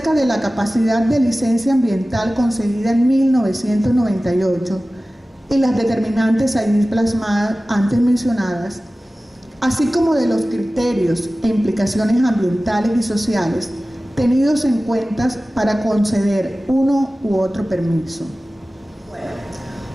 de la capacidad de licencia ambiental concedida en 1998 y las determinantes allí plasmadas antes mencionadas, así como de los criterios e implicaciones ambientales y sociales tenidos en cuenta para conceder uno u otro permiso.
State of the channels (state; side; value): normal; both; correlation 0.97